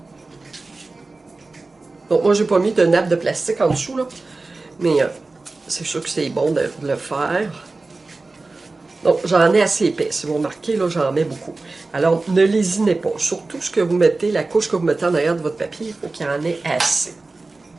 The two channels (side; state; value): left; quieter; 3.5 dB